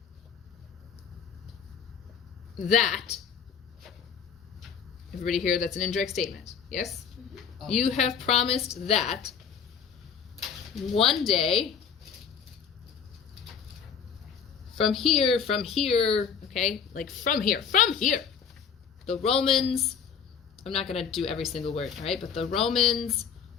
that. Everybody here, that's an indirect statement. Yes? Oh. You have promised that one day from here, okay? Like from here, the Romans, I'm not going to do every single word, right? But the Romans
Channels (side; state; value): right; quieter; 6.9 dB